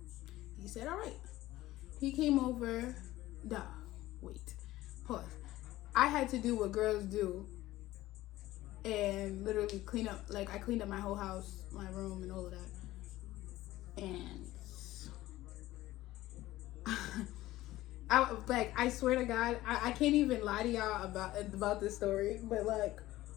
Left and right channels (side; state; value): right; quieter; 16.4 dB